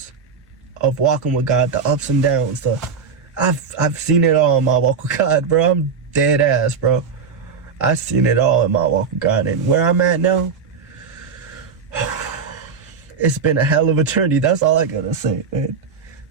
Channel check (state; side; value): quieter; left; 5.8 dB